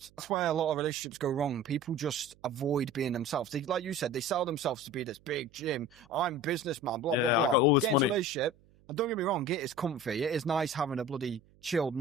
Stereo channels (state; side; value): noise; right; hum, 29 dB below the sound